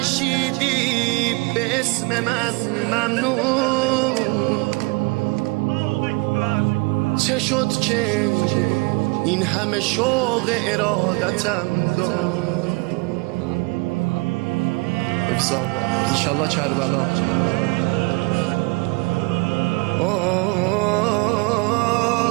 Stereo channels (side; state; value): left; quieter; 27.7 dB